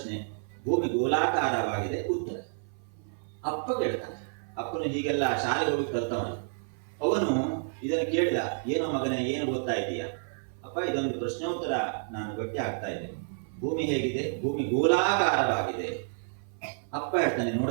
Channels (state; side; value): silent; left; 55 dB below the other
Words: ಭೂಮಿ ಗೋಲಾಕಾರವಾಗಿದೆ ಉತ್ತರ. ಅಪ್ಪ ಕೇಳ್ತಾನೆ, ಅಪ್ಪನು ಹೀಗೆಲ್ಲ ಶಾಲೆಗೆ ಹೋಗಿ ಕಲ್ತವನು. ಅವನು ಇದನ್ನು ಕೇಳಿದ, ಏನೋ ಮಗನೇ ಏನು ಓದ್ತಾ ಇದೀಯಾ? ಅಪ್ಪ ಇದೊಂದು ಪ್ರಶ್ನೋತ್ತರ ನಾನು ಗಟ್ಟಿ ಆಗ್ತಾ ಇದ್ದೆ, ಭೂಮಿ ಹೇಗಿದೆ? ಭೂಮಿ ಗೋಲಾಕಾರವಾಗಿದೆ. ಅಪ್ಪ ಹೇಳ್ತಾನೆ,